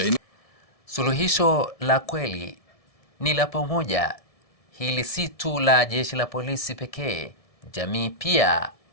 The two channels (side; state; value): right; late; 1.7 ms